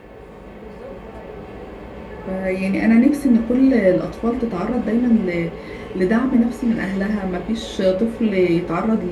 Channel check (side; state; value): both; identical; correlation 1.00